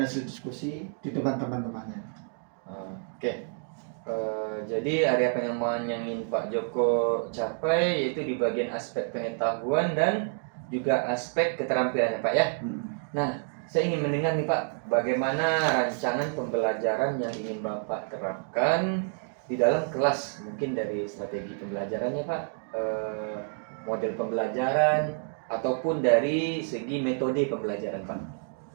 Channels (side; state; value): left; silent; 59 dB below the other